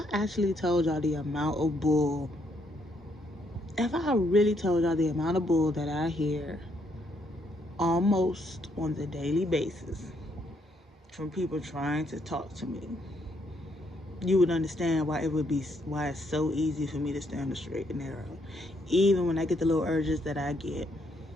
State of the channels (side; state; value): both; normal; correlation 0.73